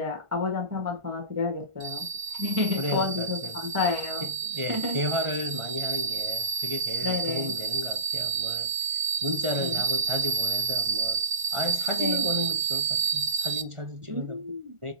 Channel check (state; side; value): late; left; 1.4 ms